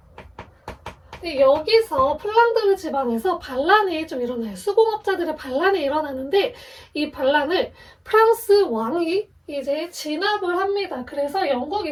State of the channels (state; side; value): identical; both; correlation 1.00